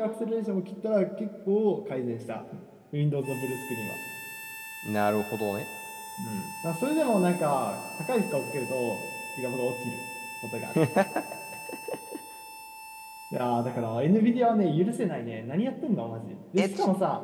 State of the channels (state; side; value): identical; both; correlation 1.00